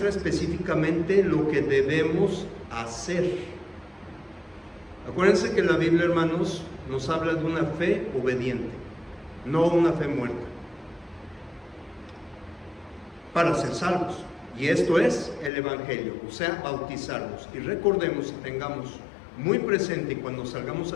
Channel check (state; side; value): drops out; right; at 15.5 s